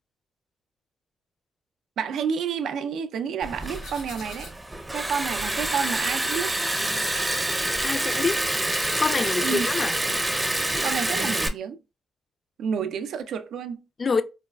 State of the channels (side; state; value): both; normal; correlation 0.86